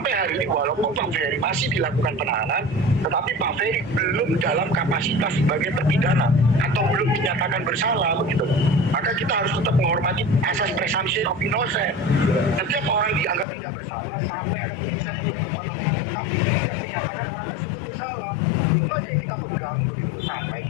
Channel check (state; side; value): drops out; right; at 13.5 s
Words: hari ini walaupun Pak Ferry masih dilakukan penahanan, tetapi Pak Ferry belum dalam kapasitas sebagai terpidana atau belum dinyatakan bersalah begitu. Maka kita harus tetap menghormati asas presumption of innocence. Setiap orang dianggap tidak bersalah sampai ada putusan yang berkekuatan hukum tetap yang menyatakan orang tersebut bersalah. Itu aja yang kita pegang begitu loh, sampai